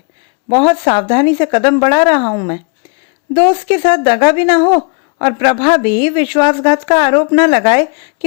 बहुत सावधानी से कदम बढ़ा रहा हूं मैं। दोस्त के साथ दगा भी ना हो और प्रभा भी विश्वासघात का आरोप न लगाए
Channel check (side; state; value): right; quieter; 35.8 dB